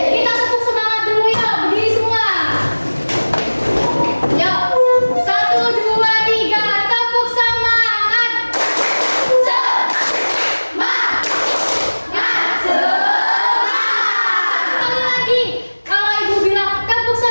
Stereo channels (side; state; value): both; inverted; correlation -1.00